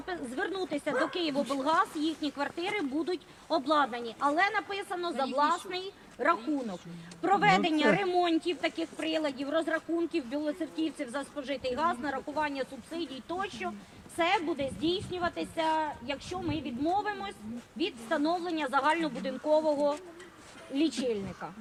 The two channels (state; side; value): identical; both; correlation 1.00